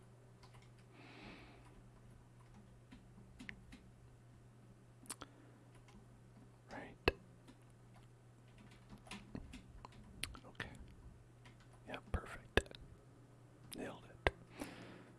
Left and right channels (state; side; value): identical; both; correlation 1.00